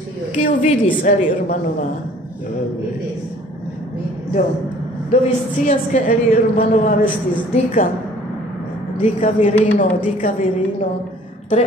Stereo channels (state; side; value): normal; both; correlation 0.53